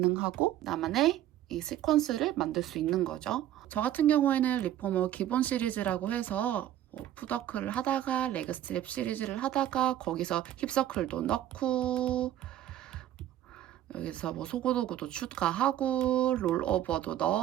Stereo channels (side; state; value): left; quieter; 12.3 dB